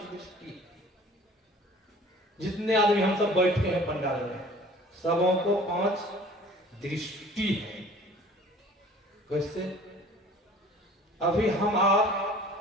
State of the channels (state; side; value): normal; both; correlation 0.49